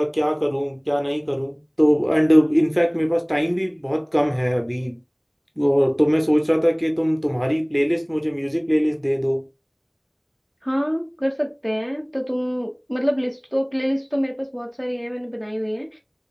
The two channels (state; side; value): identical; both; correlation 1.00